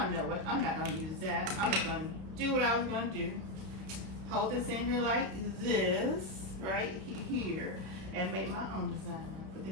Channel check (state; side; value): late; left; 32 ms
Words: don't know what. I'm not gonna use that. I'm just gonna do what I was gonna do. Hold this in here like this, right here, and make my own design. Put the